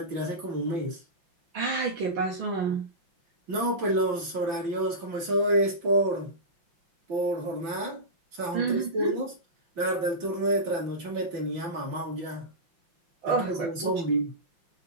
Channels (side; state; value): left; late; 5.9 ms